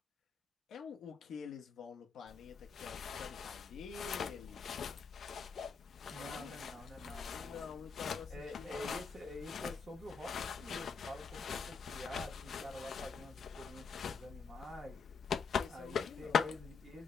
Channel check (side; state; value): right; quieter; 5.5 dB